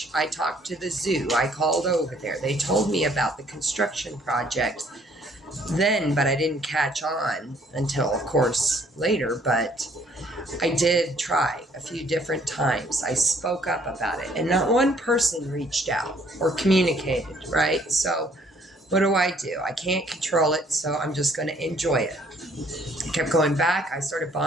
I talked to the zoo. I called over there. They told me about the construction project then, but I didn't catch on until, of course, later. But I did try a few different times. I spoke up about it, and not one person reached out or communicated, right? So what do? I can't control it, so I'm just going to enjoy it. I kept going back. I started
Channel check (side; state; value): both; normal; correlation 0.62